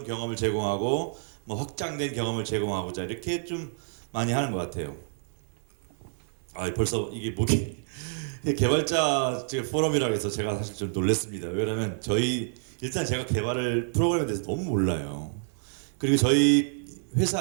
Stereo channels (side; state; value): left; silent; 59 dB below the other